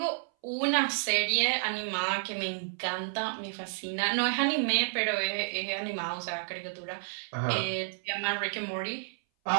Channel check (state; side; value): silent; left; 57 dB below the other